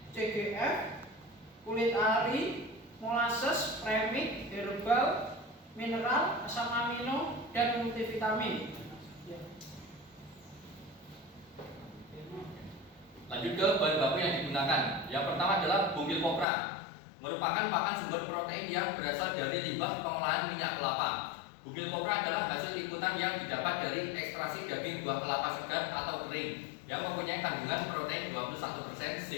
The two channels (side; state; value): right; drops out; at 16.4 s